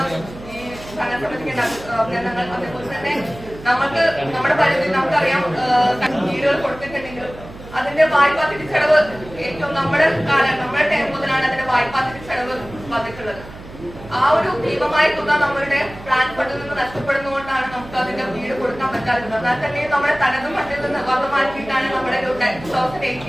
ഈ ഭരണസമിതിക്ക് അഭിനന്ദനങ്ങൾ. അതേപോലെ തന്നെ നമുക്ക് നമ്മുടെ പരിധി നമുക്കറിയാം, വീടുകൾ കൊടുത്തിട്ടുണ്ടെങ്കിലും അതിന്റെ വായ്പാ തിരിച്ചടവ് ഏറ്റവും നമ്മുടെ ടൈം മുതലാണ് അതിന്റെ വായ്പാ തിരിച്ചടവ് വന്നിട്ടുള്ളത്. ആ ഒരു ഭീമമായ തുക നമ്മളുടെ പ്ലാൻ ഫണ്ടിൽ നിന്ന് നഷ്ടപ്പെടുന്നതുകൊണ്ടാണ് നമുക്ക് അതിന്റെ വീട് കൊടുക്കാൻ പറ്റാത്തത്. എന്നാൽ തന്നെ നമ്മുടെ തനത് ഫണ്ടിൽ നിന്ന് വക മാറ്റിയിട്ടാണ് നമ്മുടെ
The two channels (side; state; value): right; noise; hum, 16 dB below the sound